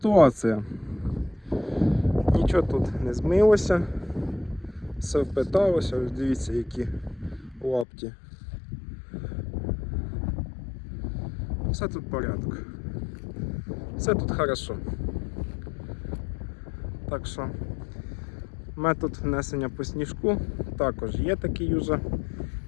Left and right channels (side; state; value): right; drops out; at 7.9 s